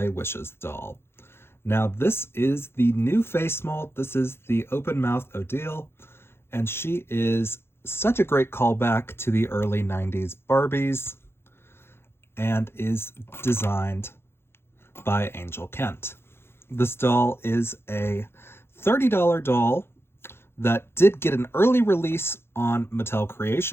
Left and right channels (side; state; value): right; late; 0.12 ms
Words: Wishes doll. Now this is the new face mold. This is the open mouth Odile, and she is such a great callback to the early 90s Barbies and is designed by Angel Kent. This doll is a $30 doll that did get an early release on Mattel